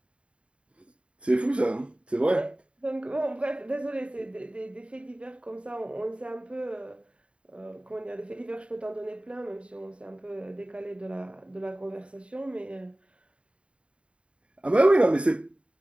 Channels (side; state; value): left; late; 0.059 ms